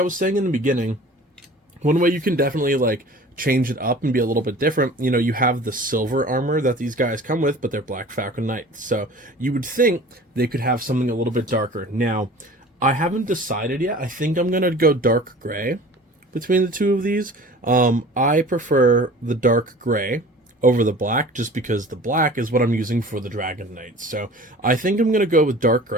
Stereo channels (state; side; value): normal; both; correlation 0.43